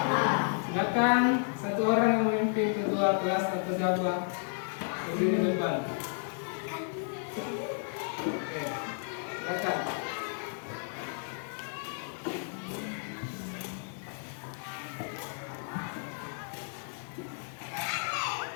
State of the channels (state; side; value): silent; right; 56 dB below the other